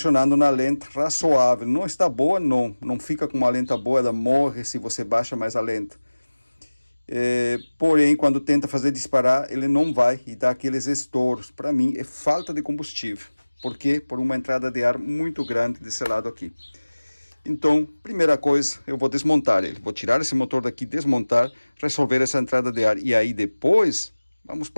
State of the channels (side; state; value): both; inverted; correlation -1.00